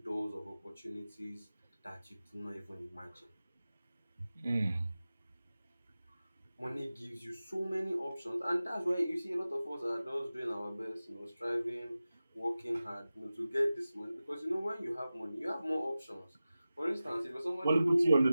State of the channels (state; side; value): inverted; both; correlation -0.95